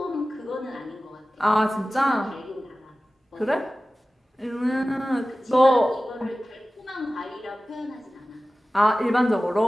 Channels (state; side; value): normal; both; correlation 0.96